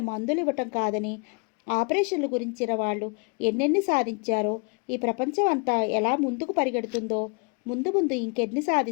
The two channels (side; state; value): right; quieter; 33.1 dB